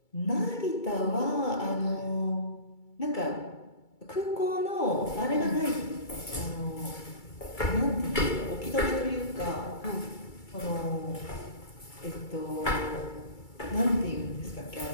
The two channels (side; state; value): right; late; 2.3 ms